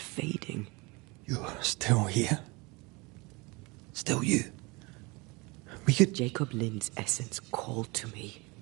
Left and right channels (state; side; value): quieter; left; 26.2 dB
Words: fading. You're still here? Still you? We could... Jacob Lynn's essence called to me.